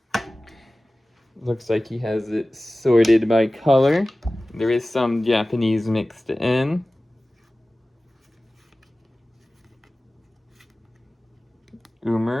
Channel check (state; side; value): normal; both; correlation 0.97